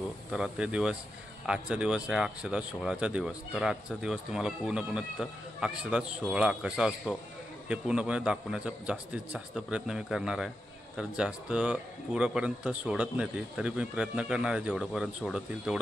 तर ते दिवस, आजचा दिवस आहे अक्षदा सोहळाचा दिवस। तर आजचा दिवस तुम्हाला पूर्णपणे अक्षदा सोहळा कसा असतो हे पूर्णपणे दाखवण्याचा जास्तीत जास्त प्रयत्न मी करणार आहे। तर जास्त पुरापर्यंत सोडत नाही ती, तरी मी प्रयत्न करणार आहे जेवढंपर्यंत सोडतील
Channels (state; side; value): normal; both; correlation 0.88